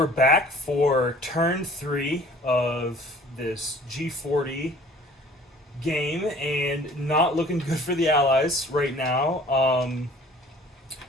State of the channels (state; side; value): normal; both; correlation 0.51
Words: back for turn 3 of this G40 game, and not looking good for the Allies right now.